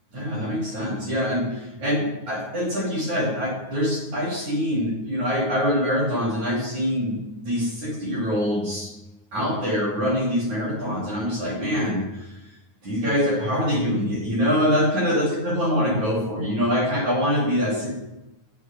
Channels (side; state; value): left; late; 9.4 ms